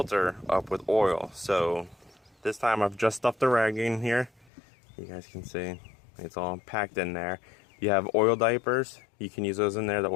up with oil. So this time I've just stuffed the rag in here. You guys can see it's all packed in there. You have oil diapers. You can use those in there, the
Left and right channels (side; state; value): right; drops out; at 4.5 s